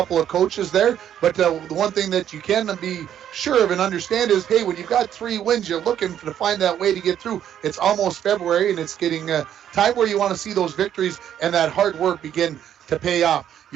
of coaches there. But the one thing that you can be sure of and understand is, hey, when you've got 3 wins, you're looking to find that way to get through. It's almost February, and it's getting time where you want to see those victories and that hard work begin to pay off.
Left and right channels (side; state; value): left; quieter; 10.2 dB